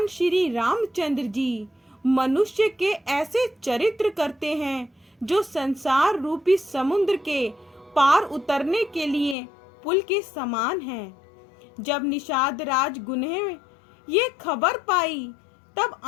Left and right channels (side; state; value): right; drops out; at 9.3 s